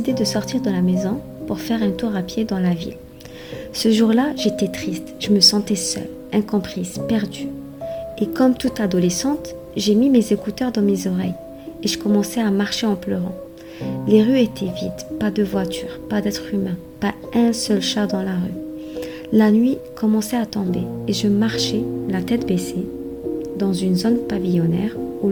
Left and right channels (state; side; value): identical; both; correlation 1.00